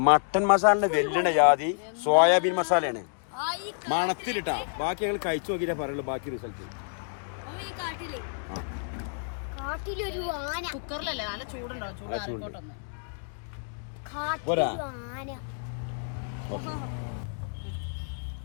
മട്ടൻ മസാലിന്റെ വെല്ലണ ജാതി സോയാബീൻ മസാലയാണ്. മണത്തിലിട്ടാ. ബാക്കി ഞങ്ങൾ കഴിച്ചു നോക്കിയിട്ടേ പറയുള്ളൂ ബാക്കി റിസൾട്ട്. കുക്കറിലല്ലേ? നല്ല ചൂടുണ്ടാവും. ചൂടാറിക്കോട്ടൊന്ന്.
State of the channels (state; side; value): silent; right; digital silence